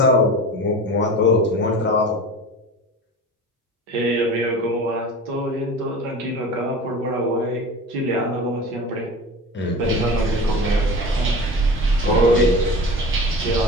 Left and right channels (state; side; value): normal; both; correlation 0.34